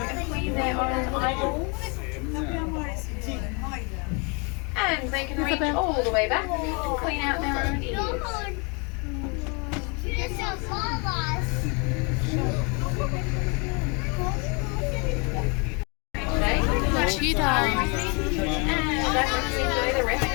clean their own eyeballs. And they can reach all the way back and clean out their own ears. The cheetah And that lets you enjoy the rest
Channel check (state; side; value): quieter; right; 32.8 dB